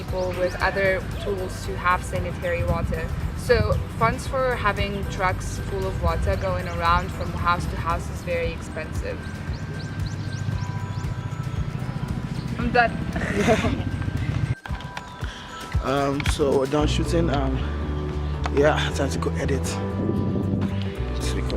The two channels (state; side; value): identical; both; correlation 1.00